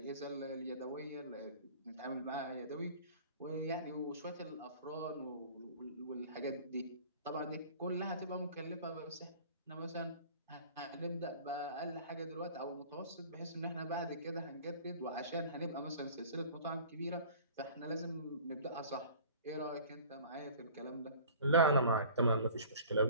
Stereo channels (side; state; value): both; inverted; correlation -0.45